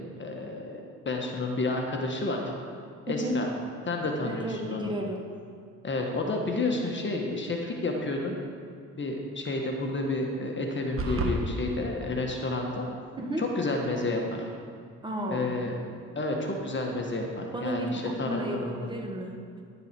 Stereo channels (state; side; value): normal; both; correlation 0.39